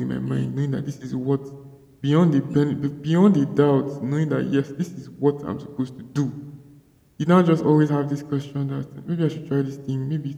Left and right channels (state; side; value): identical; both; correlation 1.00